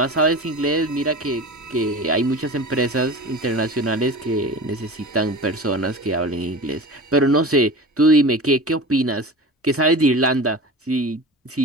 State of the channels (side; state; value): both; normal; correlation 0.34